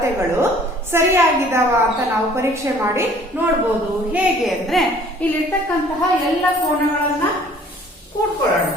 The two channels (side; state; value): both; normal; correlation 0.54